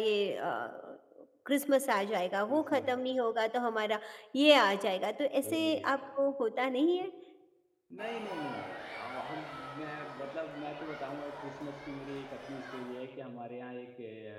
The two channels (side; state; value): both; identical; correlation 1.00